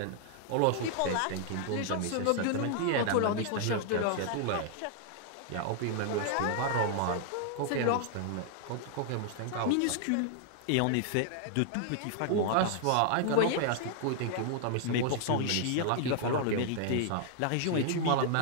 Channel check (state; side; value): different; both; correlation 0.00